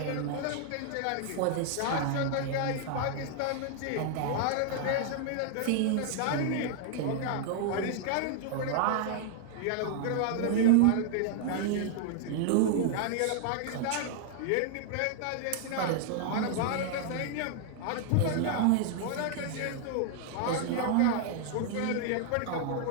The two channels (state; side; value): different; both; correlation 0.00